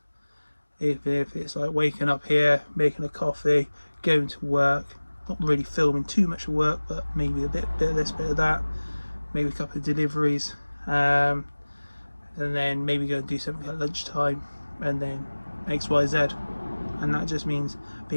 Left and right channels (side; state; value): both; inverted; correlation -1.00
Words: If it's like waking up here, making a coffee, going to work, not really filming too much work, but maybe a bit of this, bit of that, maybe a couple of deliveries, and then maybe go and do something at lunchtime, and then XYZ. And that just means